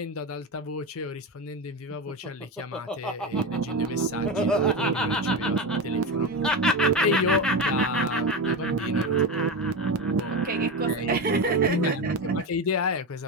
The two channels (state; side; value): normal; both; correlation 0.18